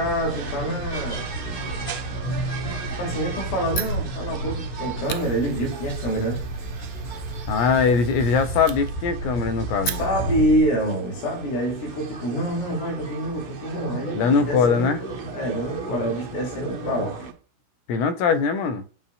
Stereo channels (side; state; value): right; late; 17 ms